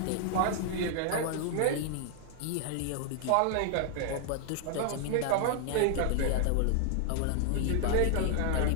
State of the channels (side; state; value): both; different; correlation 0.00